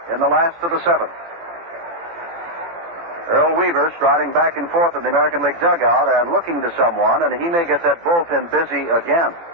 in the last of the seventh. Earl Weaver striding back and forth in the American League dugout and looking to someone, and he may get that bullpen busy again.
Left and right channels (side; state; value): left; late; 17 ms